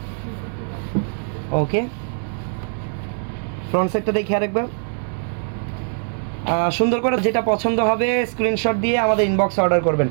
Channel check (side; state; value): left; silent; digital silence